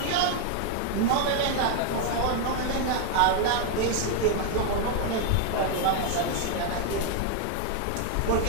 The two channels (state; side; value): different; both; correlation 0.00